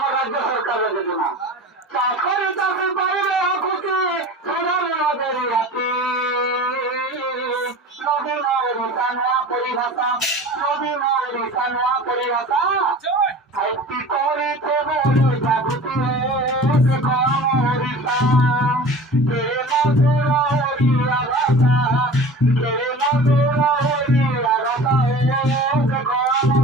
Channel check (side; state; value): both; normal; correlation 0.38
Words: রাজ্য সরকারের যোজনা চাকরি চাকরি পাইলে খুশি আমাদের রাতে নবীন রিসানোয়া পরিভাষা নবীন রিসানোয়া পরিভাষা একটি করিতে বলি জাগৃতি করিতা কে মধুর হরিয়া ভাষা কে মধুর হরিয়া রসা